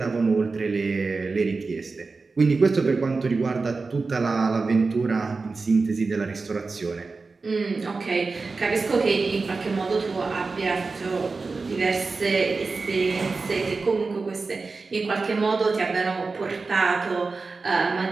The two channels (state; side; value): quieter; left; 4.1 dB